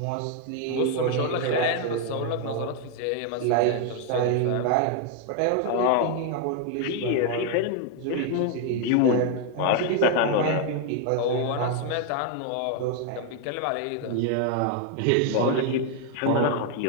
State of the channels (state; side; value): different; both; correlation 0.01